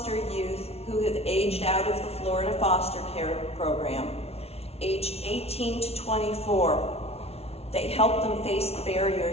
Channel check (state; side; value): late; right; 0.30 ms